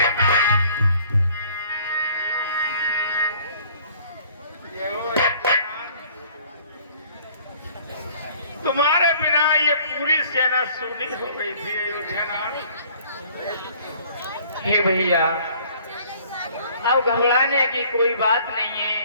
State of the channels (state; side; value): inverted; both; correlation -0.55